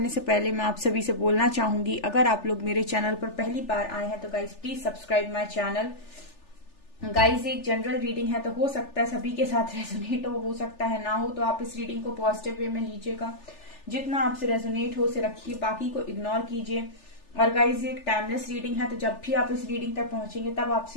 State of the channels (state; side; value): late; right; 3.4 ms